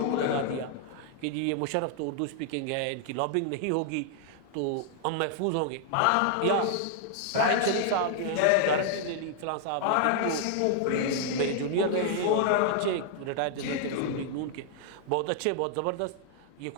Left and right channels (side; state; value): both; different; correlation 0.00